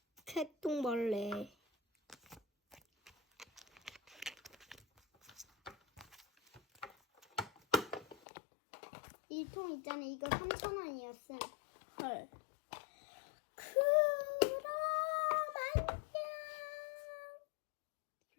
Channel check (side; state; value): right; drops out; at 8.2 s